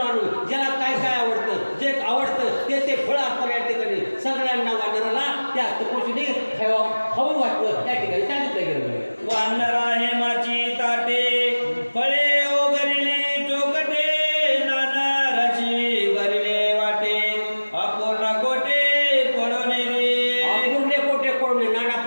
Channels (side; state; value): both; inverted; correlation -1.00